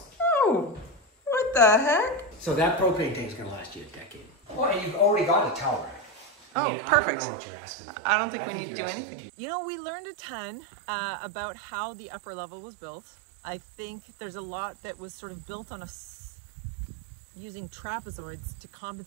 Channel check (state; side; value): drops out; left; at 6.4 s